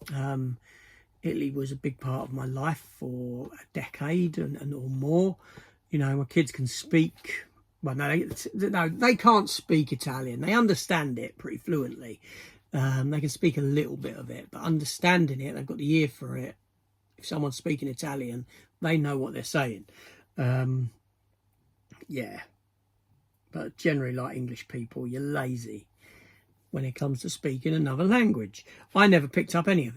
Italy was a big part of my life for a decade and or more. You know, my kids can speak. Well, no, they can't speak Italian. They understand it pretty fluently. They can speak a little bit of it, but understanding it, they've got the ear for it. If someone's speaking Italian, they know what they're saying. Yeah. But generally, like English people, you're lazy when it comes to speaking another language. I never picked up any of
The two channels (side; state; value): both; identical; correlation 1.00